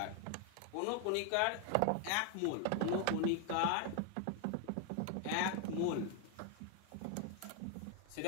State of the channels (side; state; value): both; different; correlation 0.00